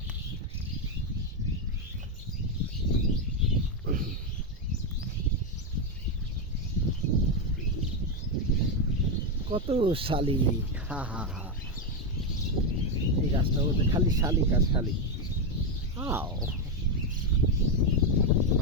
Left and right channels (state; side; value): normal; both; correlation 0.06